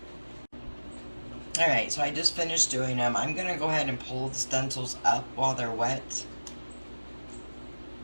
Alright, so I just finished doing them. I'm going to go ahead and pull the stencils up while they're wet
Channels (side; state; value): both; inverted; correlation -1.00